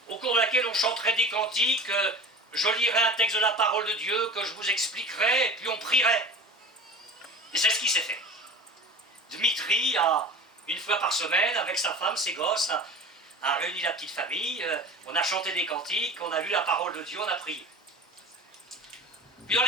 au cours de laquelle on chanterait des cantiques, je lirais un texte de la parole de Dieu que je vous expliquerai, et puis on prierait. Et c'est ce qui s'est fait. Dmitri a, une fois par semaine, avec sa femme, ses gosses, a réuni la petite famille, on a chanté des cantiques, on a lu la parole de Dieu, on a prié. Puis dans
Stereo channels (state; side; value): normal; both; correlation 0.37